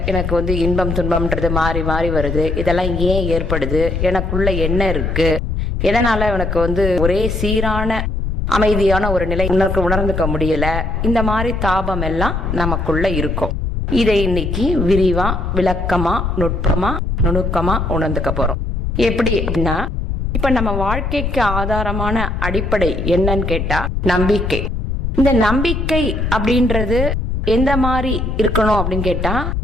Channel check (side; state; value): left; noise; rumble, 2 dB below the sound